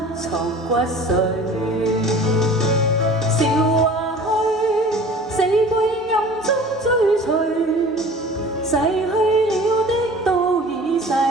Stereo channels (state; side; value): normal; both; correlation 0.43